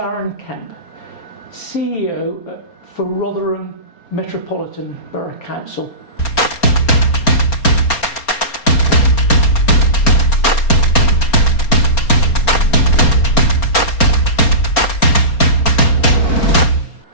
Kemp, CEO for Rotherham Metropolitan Borough Council.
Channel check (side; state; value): right; late; 4.3 ms